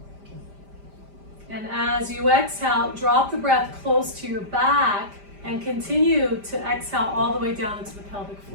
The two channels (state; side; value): late; left; 5.0 ms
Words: And as you exhale, drop the breath close to your back and continue to exhale all the way down into the pelvic